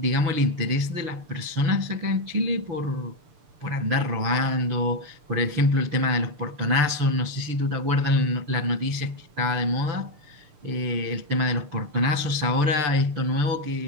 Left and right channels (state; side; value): late; left; 6.8 ms